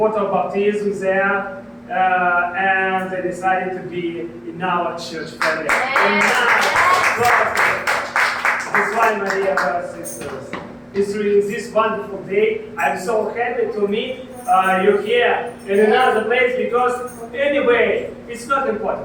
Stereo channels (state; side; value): identical; both; correlation 1.00